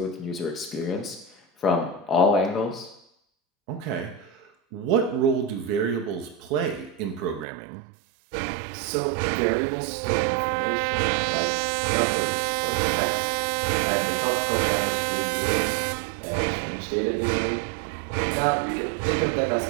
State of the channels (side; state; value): left; drops out; at 7.5 s